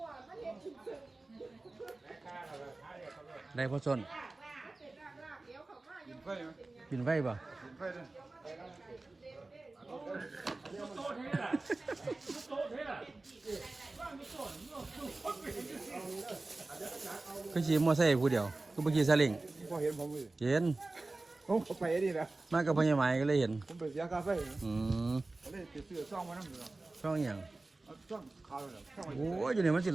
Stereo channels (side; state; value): left; quieter; 3.2 dB